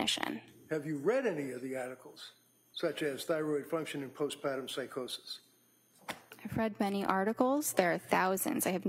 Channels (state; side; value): identical; both; correlation 1.00